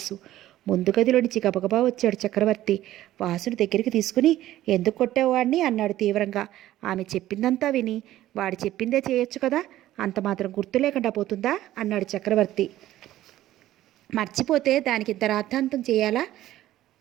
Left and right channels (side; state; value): left; quieter; 14.2 dB